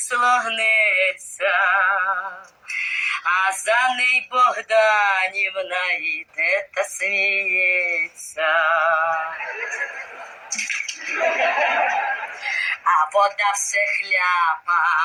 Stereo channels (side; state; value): both; identical; correlation 1.00